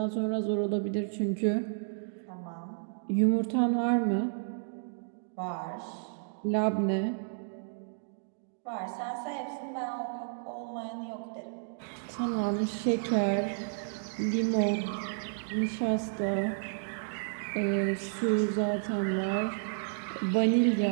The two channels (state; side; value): silent; left; digital silence